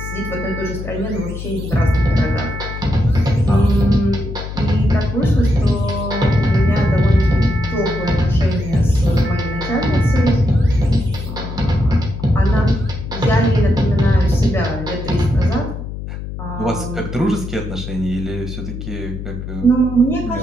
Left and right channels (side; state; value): left; noise; hum, 8 dB below the sound